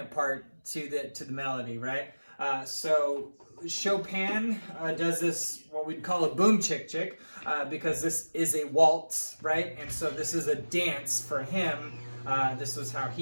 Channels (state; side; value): inverted; both; correlation -1.00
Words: part to the melody, right? So Chopin does this, what we'd call a boom chick chick, because this is a waltz, right? And so this is a dance for him. This was how